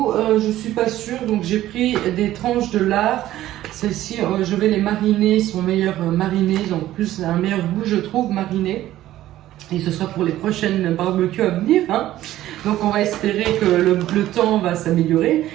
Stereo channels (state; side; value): quieter; left; 14.1 dB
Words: Je ne suis pas sûre, donc j'ai pris des tranches de lard. Celles-ci, je vais les mariner, ils sont meilleurs marinés. Ils ont plus un meilleur goût, je trouve, marinés. Et ce sera pour les prochaines barbecues à venir. Hein. Donc on va espérer que le temps va s'améliorer,